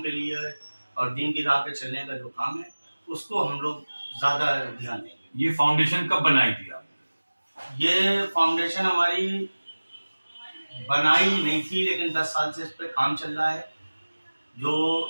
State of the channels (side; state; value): both; inverted; correlation -1.00